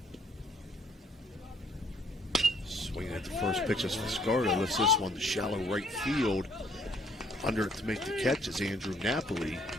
Swinging at the first pitch as Fiscardo lifts this one to shallow right field. Under it to make the catch is Andrew Napoli.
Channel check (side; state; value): both; normal; correlation 0.63